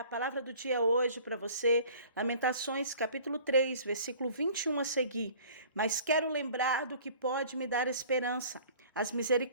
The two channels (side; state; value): both; inverted; correlation -0.49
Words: palavra do dia hoje para você, Lamentações, capítulo 3, versículo 21 a seguir. Mas quero lembrar do que pode me dar esperança. As